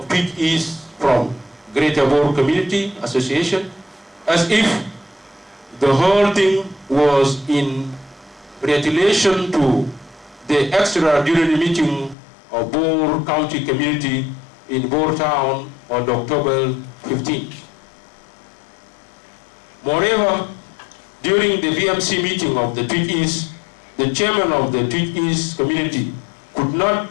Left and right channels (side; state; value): right; drops out; at 12.2 s